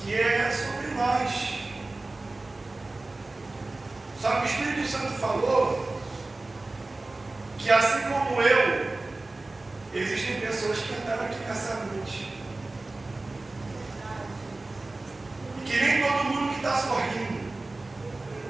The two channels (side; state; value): left; quieter; 3.1 dB